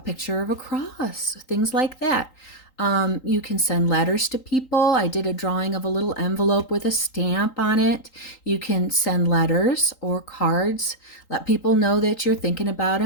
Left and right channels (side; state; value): right; late; 3.8 ms